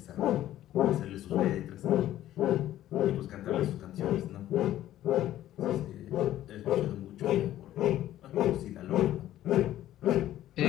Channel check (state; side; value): quieter; right; 13.2 dB